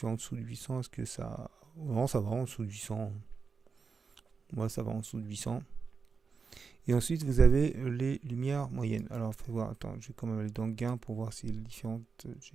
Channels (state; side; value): quieter; left; 5.2 dB